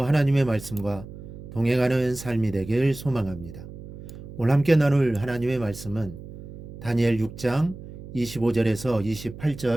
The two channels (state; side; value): noise; right; hum, 14 dB below the sound